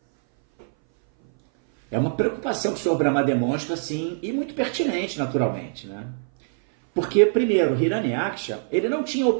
uma preocupação que o Senhor Brahma demonstra, assim, e muito pertinente, naturalmente, né? Porque, primeiro, Hiranyaksha, ele não tinha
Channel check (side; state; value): left; silent; 59 dB below the other